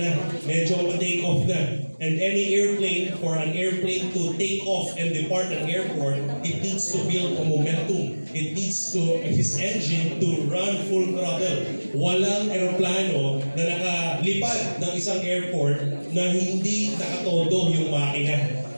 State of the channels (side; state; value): both; inverted; correlation -1.00